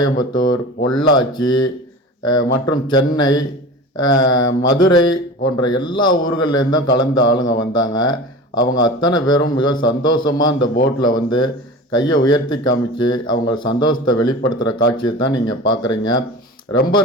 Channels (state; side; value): normal; both; correlation 0.34